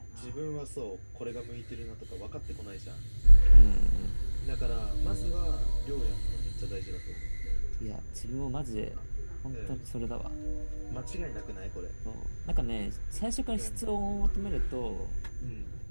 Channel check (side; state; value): both; inverted; correlation -1.00